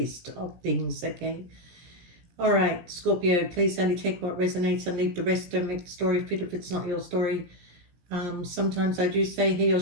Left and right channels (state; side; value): late; left; 17 ms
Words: of things, okay? All right, Scorpio, please only take what resonates and leave the rest. Don't make the story fit if it's not your story. Sometimes I do say he or